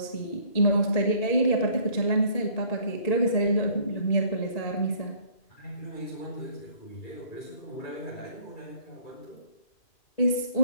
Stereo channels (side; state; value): right; late; 1.9 ms